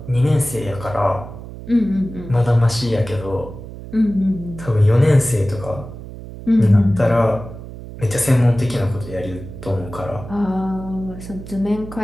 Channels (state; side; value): noise; right; hum, 13 dB below the sound